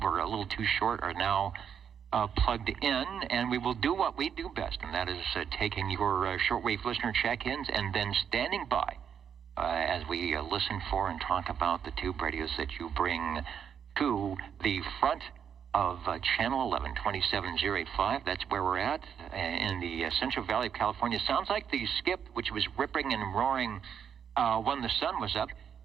a little too short are now plugged in, and we will do what we do best, and that is taking your shortwave listener check-ins and then standing by as we listen for and talk about the tube radios that you bring to the front of Channel 11, 27085. That's where we're at in the Central Valley of California. Sounds like the skip, which was ripping and roaring when the sun was up,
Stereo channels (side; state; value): left; quieter; 7.9 dB